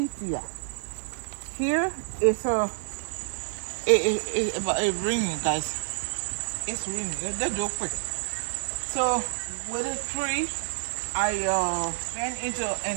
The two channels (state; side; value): silent; left; 56 dB below the other